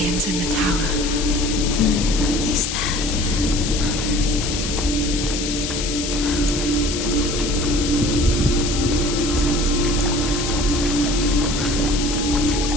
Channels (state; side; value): noise; left; hiss, 4 dB below the sound